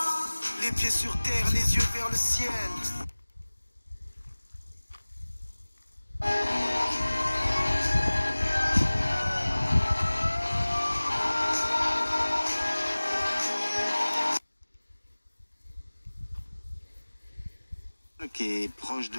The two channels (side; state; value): both; inverted; correlation -1.00